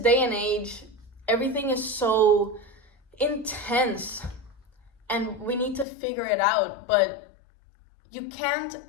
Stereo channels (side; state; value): right; drops out; at 5.9 s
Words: and age, everything is so intense, and we need to figure it out. But you can't